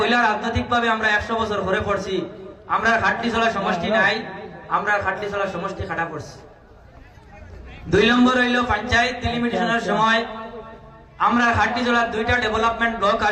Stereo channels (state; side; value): identical; both; correlation 1.00